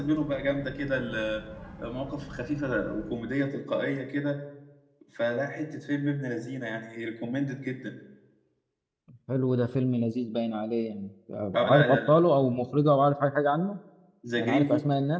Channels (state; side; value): identical; both; correlation 1.00